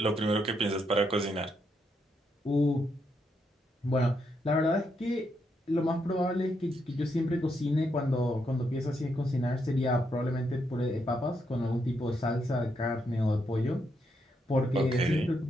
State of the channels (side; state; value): both; normal; correlation 0.79